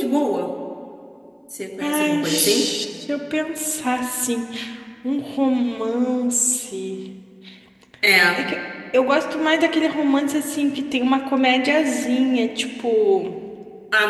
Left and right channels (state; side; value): identical; both; correlation 1.00